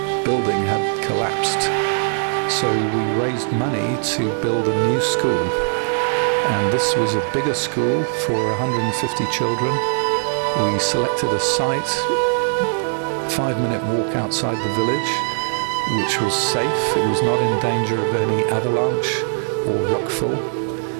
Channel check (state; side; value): silent; left; digital silence